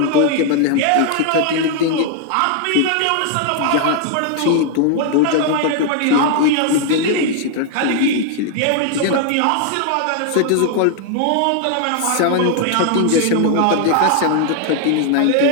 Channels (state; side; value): different; both; correlation 0.00